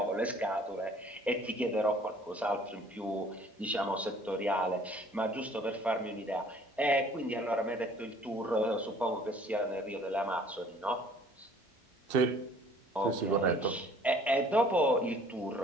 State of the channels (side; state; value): both; normal; correlation 0.54